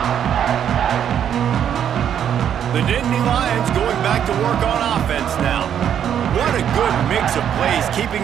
The Nittany Lions going back to work on offense now. What a good mix of plays,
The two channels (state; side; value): quieter; left; 9.2 dB